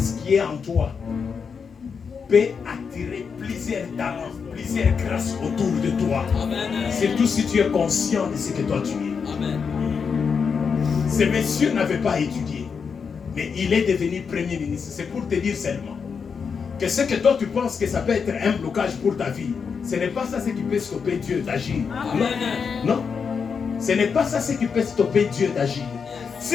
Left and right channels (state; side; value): quieter; right; 6.0 dB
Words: qui est en toi peut attirer plusieurs talents, plusieurs grâces autour de toi. Amen. Surtout si tu es conscient de ce que toi tu es. Amen. Ces messieurs n'avaient pas étudié, mais il est devenu premier ministre. C'est pour te dire seulement que ce que toi tu penses que ça peut être un blocage pour ta vie, ce n'est pas ça ce qui peut stopper Dieu d'agir. Non, non. Ce n'est pas ça ce qui peut stopper Dieu d'agir.